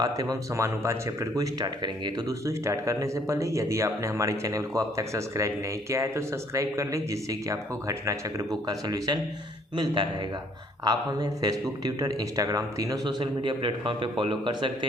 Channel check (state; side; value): normal; both; correlation 0.62